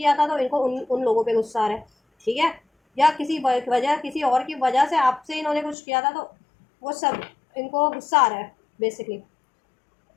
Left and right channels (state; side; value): drops out; right; at 5.8 s